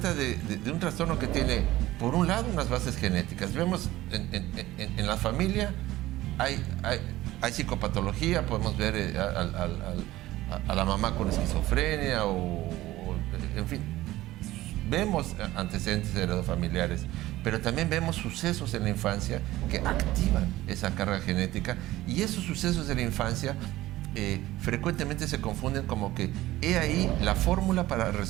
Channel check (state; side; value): quieter; left; 16.5 dB